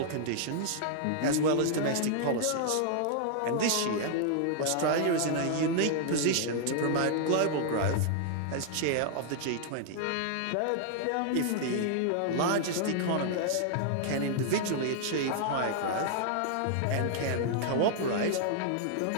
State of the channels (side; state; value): both; different; correlation -0.01